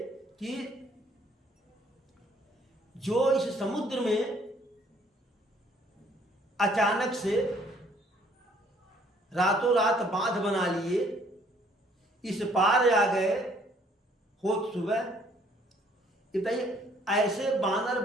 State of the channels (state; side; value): normal; both; correlation 0.62